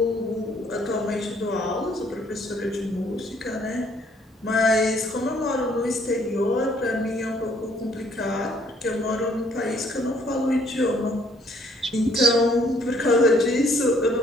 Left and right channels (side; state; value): both; normal; correlation 0.64